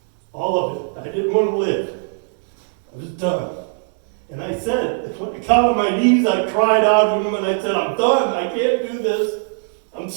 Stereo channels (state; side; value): silent; left; 66 dB below the other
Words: All of it. I didn't want to live. I was done. And I said, when I got on my knees, I cried out to Him and I said, I'm done. I can't do this. I'm